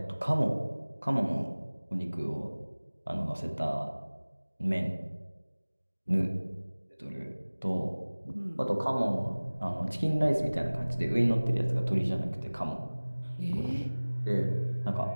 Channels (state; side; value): inverted; both; correlation -1.00